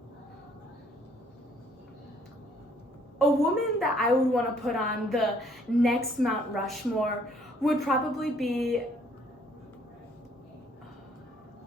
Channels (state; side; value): normal; both; correlation 0.63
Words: A woman that I would want to put on the next Mount Rushmore would probably be